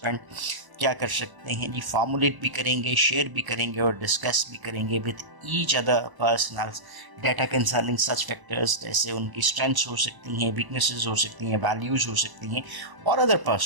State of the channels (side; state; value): left; late; 1.0 ms